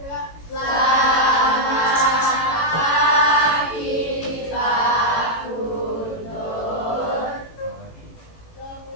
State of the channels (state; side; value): late; right; 18 ms